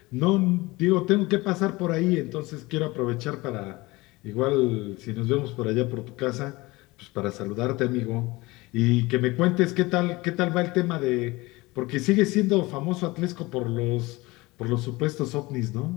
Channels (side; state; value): right; quieter; 21.9 dB